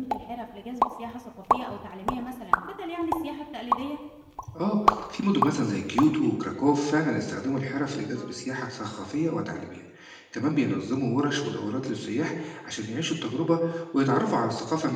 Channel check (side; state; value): both; identical; correlation 1.00